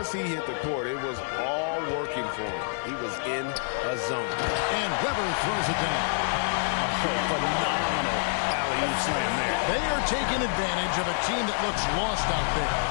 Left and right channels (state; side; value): silent; right; digital silence